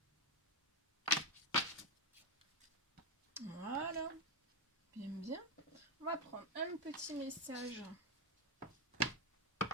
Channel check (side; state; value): both; normal; correlation 0.06